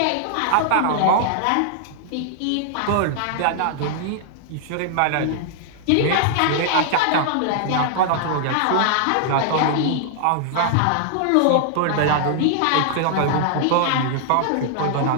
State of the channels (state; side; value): different; both; correlation -0.01